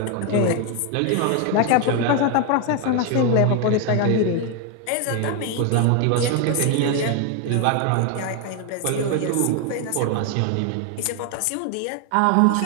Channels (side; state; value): both; different; correlation 0.01